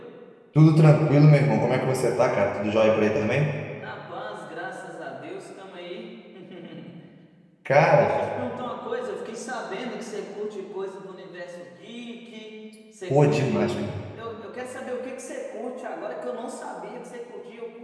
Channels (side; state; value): both; identical; correlation 1.00